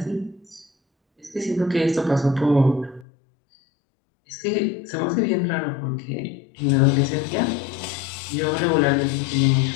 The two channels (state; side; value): drops out; right; at 3.1 s